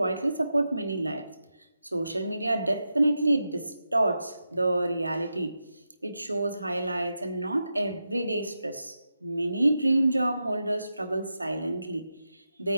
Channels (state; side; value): inverted; both; correlation -0.89